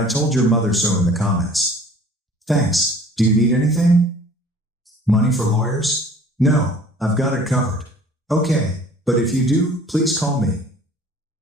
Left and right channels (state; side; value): normal; both; correlation 0.50